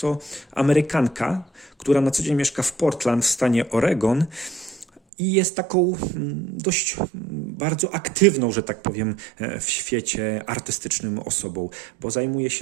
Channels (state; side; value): drops out; left; at 5.0 s